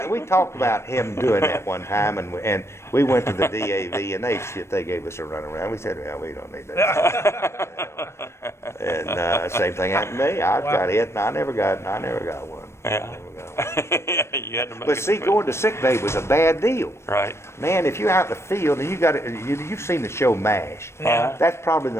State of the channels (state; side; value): late; right; 0.13 ms